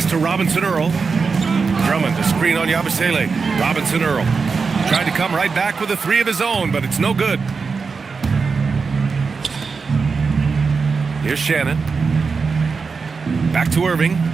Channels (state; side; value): quieter; left; 4.9 dB